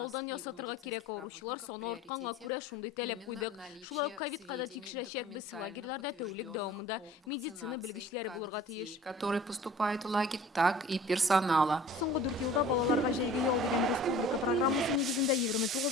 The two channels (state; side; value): normal; both; correlation 0.45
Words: ясатырга кирәк. Авыручылар саны артканга күрә шундый таләп куйдык. Шулай ук ковидка да тикшерәчәкбез. Лагерьларда тәүлек дәвамында медицина белгечләре булырга тиеш. Которые поступают в лагерь, так и персонала. Соңгы 4 елда балаларга җәйге ял дигән республика программасы нигезендә